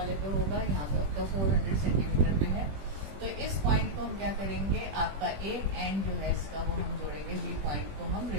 पे होगा, यहाँ पे आपका 400 सेंटीमीटर पे है। तो इस पॉइंट को हम क्या करेंगे, आपका एक एंड जो है इसका वो हम जोड़ेंगे बी पॉइंट को हम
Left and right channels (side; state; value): left; late; 20 ms